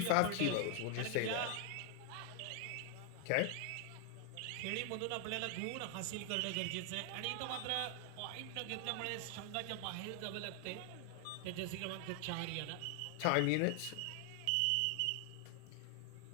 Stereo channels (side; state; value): both; different; correlation 0.00